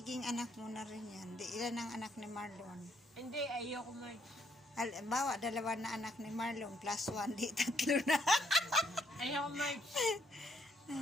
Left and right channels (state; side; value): normal; both; correlation 0.71